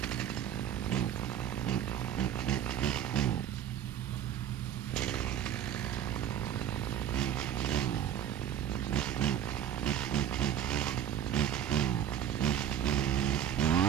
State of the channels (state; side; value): quieter; left; 10.0 dB